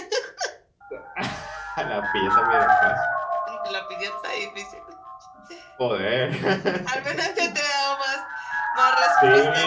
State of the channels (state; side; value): identical; both; correlation 1.00